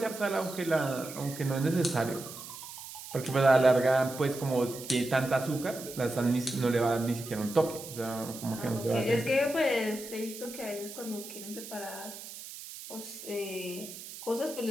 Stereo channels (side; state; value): right; noise; hiss, 12 dB below the sound